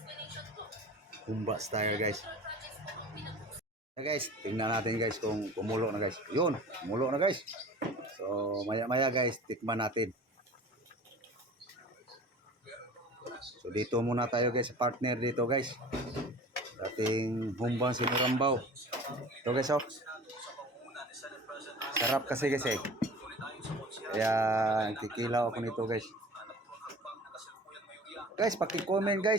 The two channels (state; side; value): normal; both; correlation 0.41